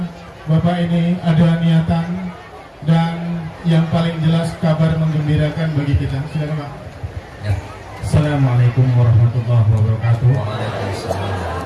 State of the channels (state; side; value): identical; both; correlation 1.00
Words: Bapak ini ada niatan dan yang paling jelas kabar menggembirakan bagi kita. Silakan Pak. Ya. Assalamualaikum warahmatullahi wabarakatuh. Waalaikumsalam.